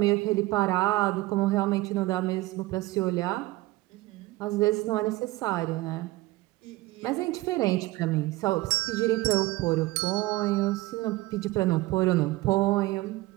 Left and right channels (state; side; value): quieter; left; 19.1 dB